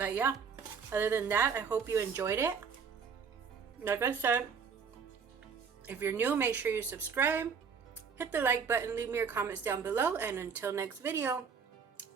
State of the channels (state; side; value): quieter; left; 6.1 dB